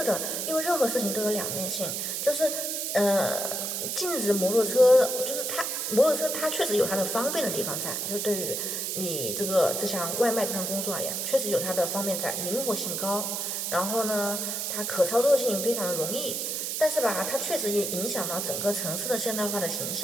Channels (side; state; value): right; noise; hiss, 2 dB below the sound